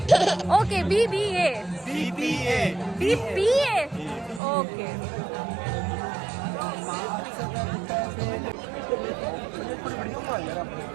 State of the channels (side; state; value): left; drops out; at 4.4 s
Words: okay BBA okay